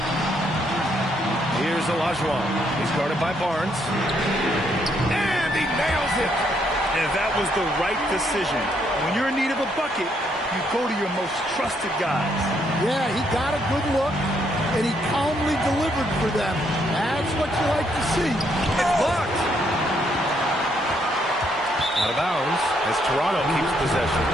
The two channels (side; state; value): both; normal; correlation 0.73